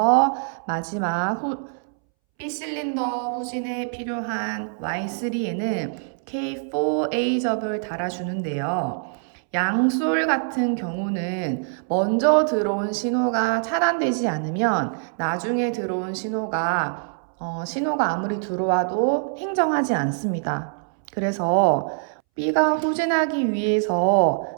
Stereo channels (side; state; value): left; silent; 63 dB below the other